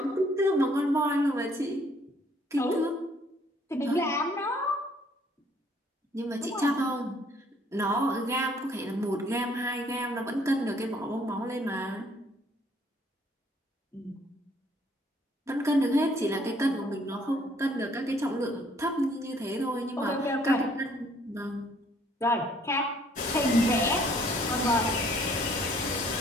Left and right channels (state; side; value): normal; both; correlation 0.62